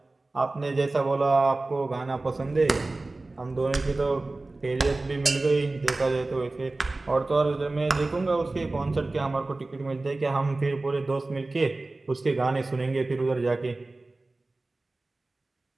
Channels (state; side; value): quieter; left; 3.1 dB